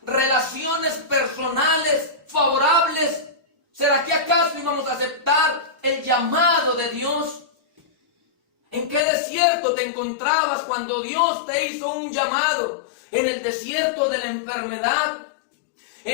relaciones personales favorables, ¿será que acaso íbamos a aceptar el llamado de Dios? ¿En qué desierto te encontrabas cuando Dios te hizo un llamado? ¿En el desierto de la enfermedad?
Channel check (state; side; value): drops out; right; at 9.1 s